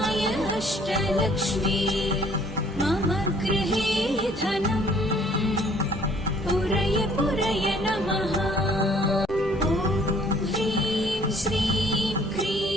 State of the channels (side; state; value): both; normal; correlation 0.59